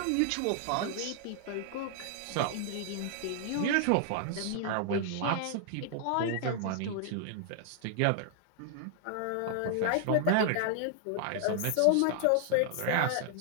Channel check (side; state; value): both; different; correlation 0.00